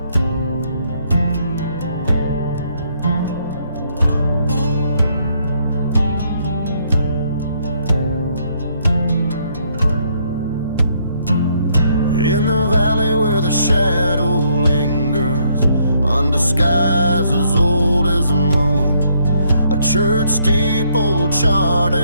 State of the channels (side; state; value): both; inverted; correlation -0.70